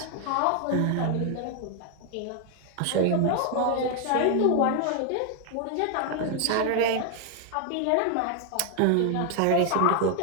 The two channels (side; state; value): both; different; correlation 0.00